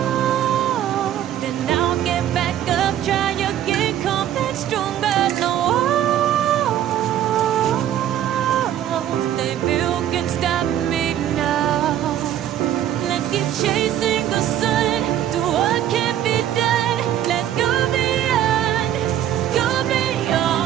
then I'll get back up, try again, come back stronger. No walls they built can stop me now. Let's keep chasing the sun, do what can be done. Let's go beyond, go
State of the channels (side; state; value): left; quieter; 11.2 dB